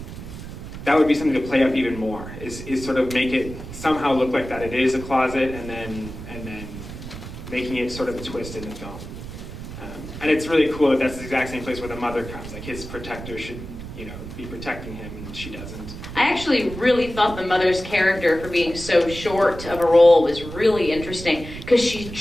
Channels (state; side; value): noise; right; rumble, 11 dB below the sound